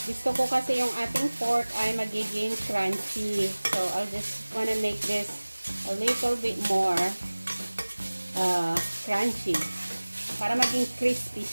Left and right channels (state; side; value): inverted; both; correlation -1.00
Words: Gusto ko kasi yung ating pork ay magiging crunchy. So, I'll just wanna make this a little bit more crunchy para maging crispy